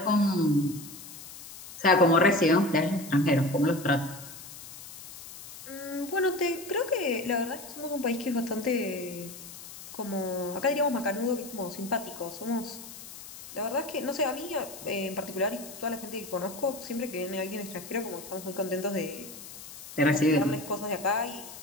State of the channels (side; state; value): left; noise; hiss, 14 dB below the sound